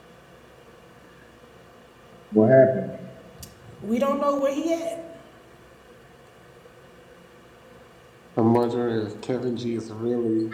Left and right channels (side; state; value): both; identical; correlation 1.00